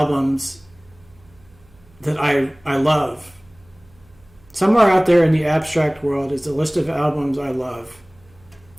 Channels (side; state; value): right; noise; hum, 28 dB below the sound